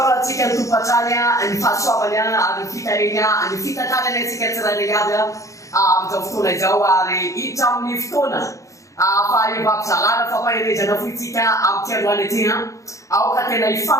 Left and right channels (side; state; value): right; late; 0.15 ms